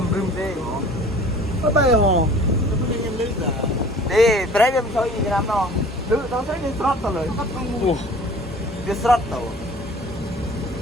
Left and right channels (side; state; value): both; normal; correlation 0.47